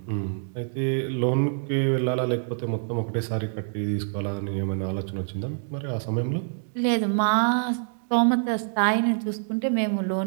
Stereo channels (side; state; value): left; silent; digital silence